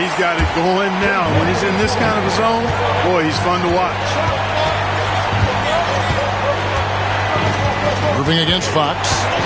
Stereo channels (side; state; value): both; identical; correlation 1.00